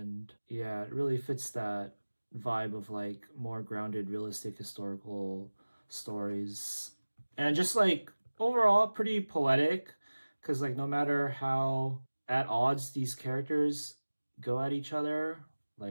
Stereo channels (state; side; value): inverted; both; correlation -1.00